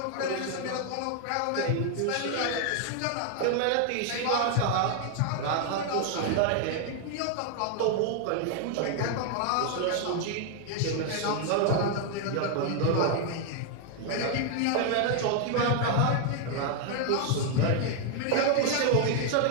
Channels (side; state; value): both; different; correlation 0.00